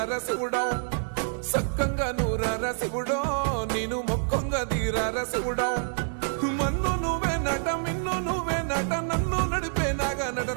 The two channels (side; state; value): left; silent; digital silence